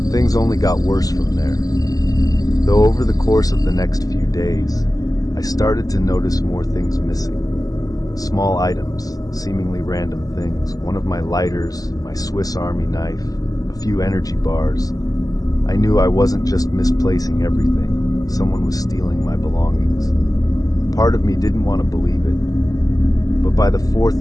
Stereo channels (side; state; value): right; late; 0.17 ms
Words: Things only got worse from there. Though over the course of the next few days, I started to notice more things missing. Small items, seemingly random things, one of my lighters, my Swiss Army knife, a few energy bars. I knew I wasn't just misplacing everything. Someone was stealing my belongings. Part of me didn't want to believe it. But by the